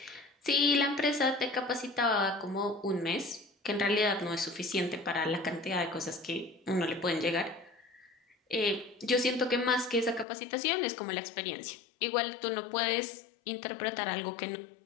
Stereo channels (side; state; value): right; drops out; at 10.2 s